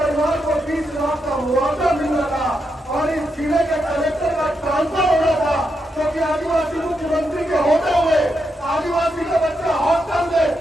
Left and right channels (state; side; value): normal; both; correlation 0.83